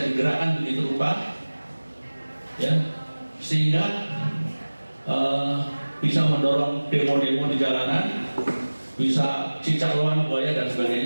digerakkan begitu rupa, ya, sehingga bisa mendorong demo-demo di jalanan, bisa cicak lawan buaya dan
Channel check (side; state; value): both; inverted; correlation -1.00